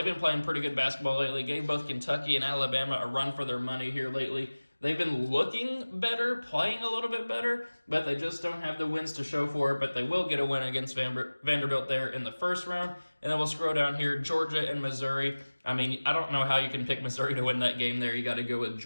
been playing pretty good basketball lately. Gave both Kentucky and Alabama a run for their money here lately. They've been looking better, playing a little bit better, but they just don't have the wins to show for it. But they will get a win against Vanderbilt there in the first round. And then we'll scroll down here, Georgia and Missouri. I mean, I don't know how you can pick Missouri to win that game there. You got to go with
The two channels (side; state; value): both; inverted; correlation -1.00